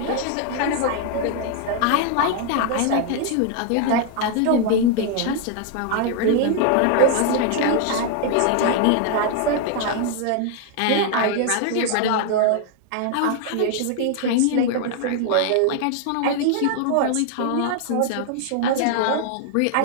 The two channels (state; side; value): different; both; correlation 0.00